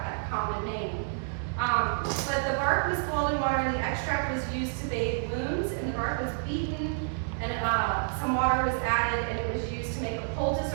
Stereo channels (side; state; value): left; silent; digital silence